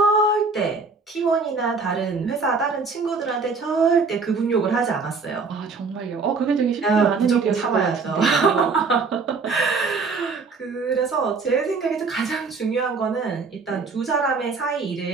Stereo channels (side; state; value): left; quieter; 4.6 dB